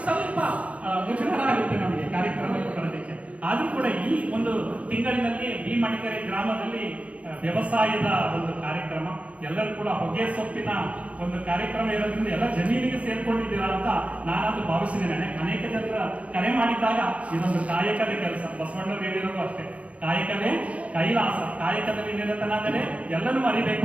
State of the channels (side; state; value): left; late; 0.065 ms